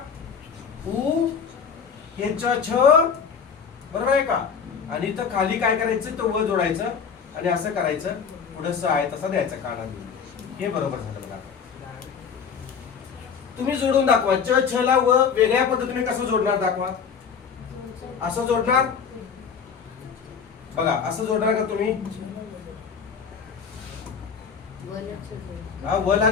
उ हे च छ बरोबर आहे का आणि इथं खाली काय करायचं तो व जोडायचं आणि असं करायचं पुढे स आहे तसा द्यायचा काना देऊन हे बरोबर झालं बघा तुम्ही जोडून दाखवा च छ ला व वेगळ्या पद्धतीने कसं जोडणार दाखवा असं जोडणार बघा असं जोडणार का तुम्ही हा व ला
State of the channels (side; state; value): right; quieter; 6.5 dB